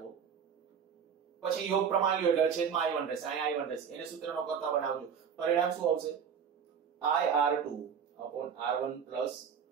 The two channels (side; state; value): left; quieter; 7.2 dB